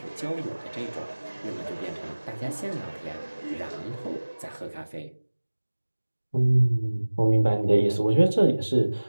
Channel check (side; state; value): both; inverted; correlation -1.00